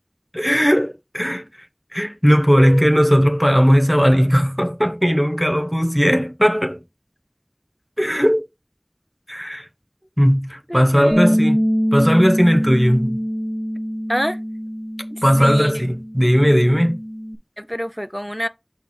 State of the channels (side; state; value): both; identical; correlation 1.00